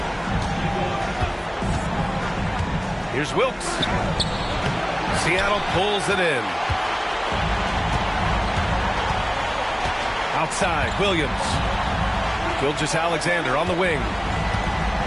Here's Wilkes. Seattle pulls it in. Outside, Williams. Gilgeous-Alexander on the wing.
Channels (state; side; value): identical; both; correlation 1.00